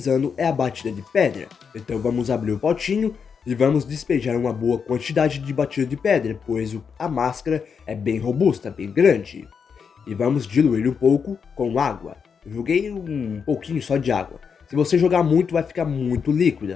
é a batida de pedra. Então vamos abrir o potinho e vamos despejar uma boa quantidade de batida de pedra, pois a máscara é bem robusta, bem grande. E vamos diluir um pouco com água. Eu joguei um pouquinho só de água. Se você jogar muito, vai ficar muito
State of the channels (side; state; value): right; quieter; 6.3 dB